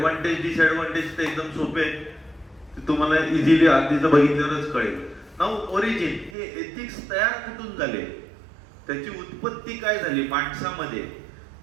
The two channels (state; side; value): drops out; left; at 6.4 s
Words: disadvantage ते एकदम सोपे आहे, ते तुम्हाला इझिली आधीच बघितल्यावरच कळेल. नाऊ ओरिजिन, हे एथिक्स तयार कुठून झाले, त्याची उत्पत्ती काय झाली माणसामध्ये.